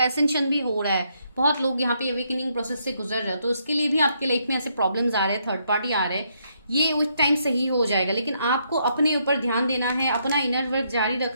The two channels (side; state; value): both; inverted; correlation -0.75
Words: एसेंशन भी हो रहा है। बहुत लोग यहाँ पे अवेकनिंग प्रोसेस से गुजर रहे हैं, तो उसके लिए भी आपके लाइफ में ऐसे प्रॉब्लम्स आ रहे हैं, थर्ड पार्टी आ रहे हैं। ये उस टाइम सही हो जाएगा, लेकिन आपको अपने ऊपर ध्यान देना है, अपना इनर वर्क जारी